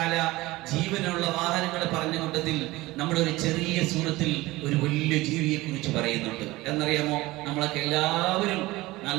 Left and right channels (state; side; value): quieter; left; 19.5 dB